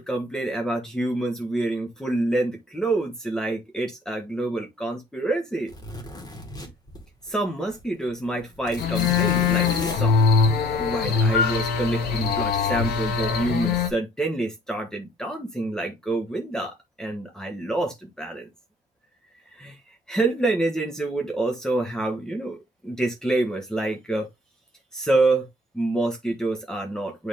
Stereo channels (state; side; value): normal; both; correlation 0.58